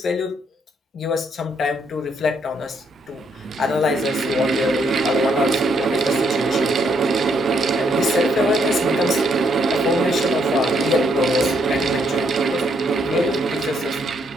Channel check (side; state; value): both; normal; correlation 0.73